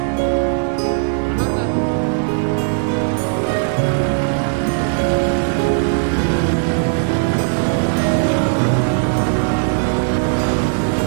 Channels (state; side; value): silent; left; 62 dB below the other